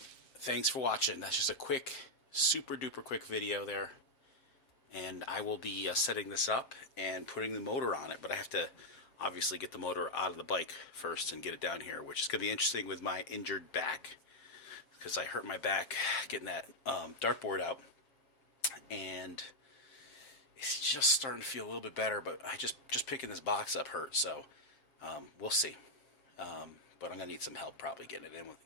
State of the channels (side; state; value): right; late; 7.6 ms